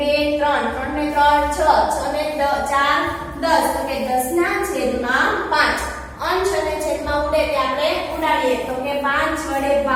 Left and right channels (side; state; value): both; identical; correlation 1.00